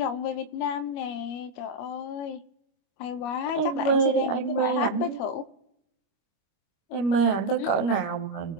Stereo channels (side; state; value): right; late; 25 ms